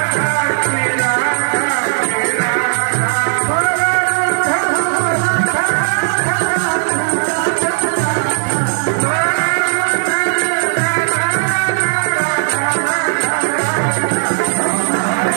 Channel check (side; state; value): left; silent; digital silence